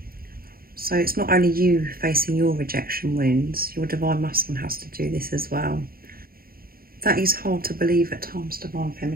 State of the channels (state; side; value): late; left; 0.43 ms